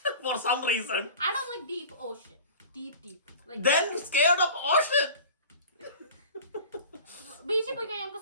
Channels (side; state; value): both; inverted; correlation -0.41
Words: for some reason. I don't like deep ocean. Deep. Like Then scared of ocean. ബീച്ചിൽ പോയി കഴിഞ്ഞാൽ